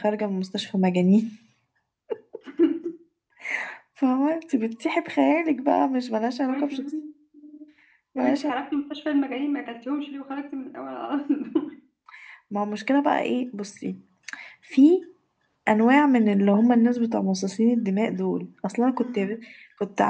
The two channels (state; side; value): identical; both; correlation 1.00